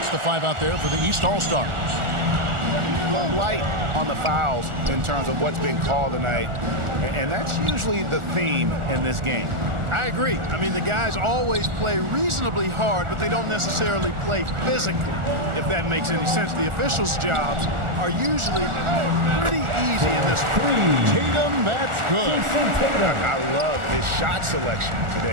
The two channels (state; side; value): late; left; 1.4 ms